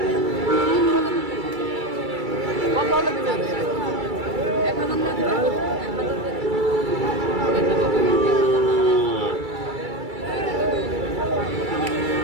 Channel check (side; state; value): left; late; 2.3 ms